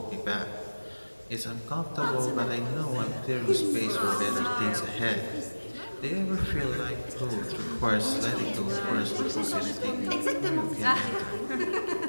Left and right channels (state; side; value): inverted; both; correlation -1.00